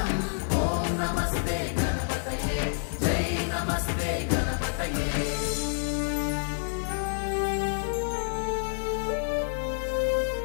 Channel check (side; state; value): right; silent; digital silence